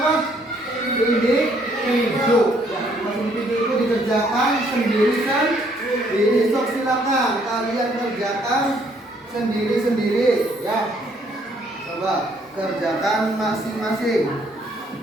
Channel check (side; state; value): both; normal; correlation 0.66